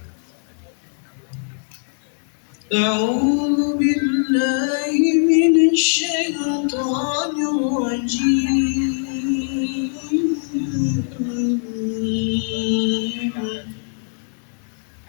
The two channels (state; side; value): silent; right; digital silence